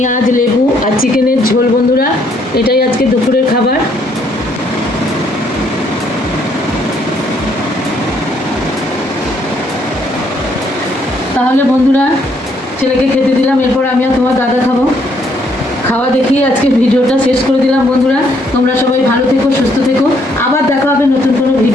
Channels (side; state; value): both; normal; correlation 0.69